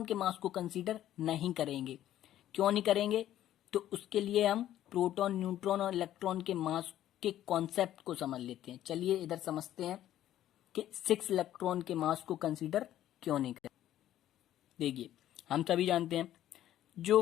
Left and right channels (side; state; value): right; quieter; 12.4 dB